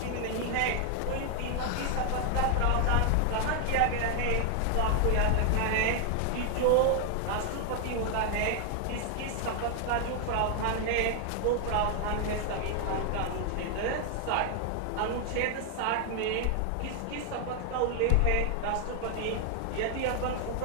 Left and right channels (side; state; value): both; different; correlation 0.00